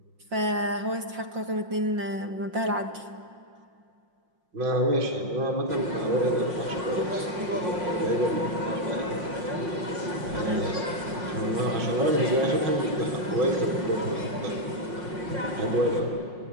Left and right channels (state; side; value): late; left; 5.6 ms